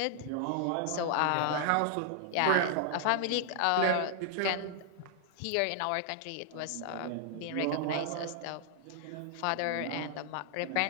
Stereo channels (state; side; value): different; both; correlation 0.00